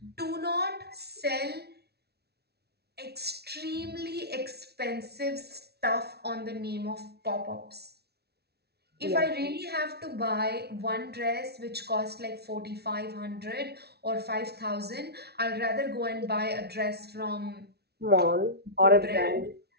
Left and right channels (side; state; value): left; late; 0.47 ms